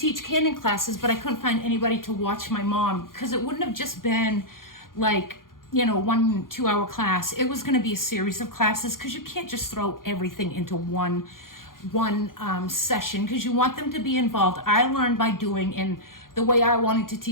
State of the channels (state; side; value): late; right; 0.91 ms